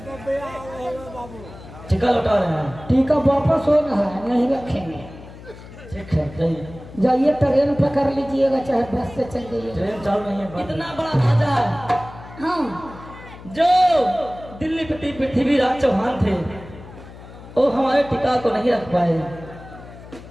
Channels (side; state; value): left; noise; hum, 17 dB below the sound